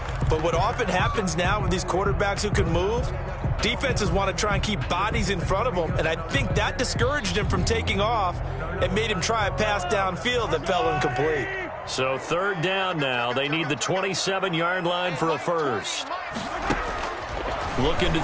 But what often happens now with these quarterbacks who can move, defenses want to try and keep bodies in front of them, and I think that discouraged him from taking off and made him try a pass downfield that fell incomplete. So 3rd down now. They need the 27-yard line for a first. Looking to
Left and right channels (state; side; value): identical; both; correlation 1.00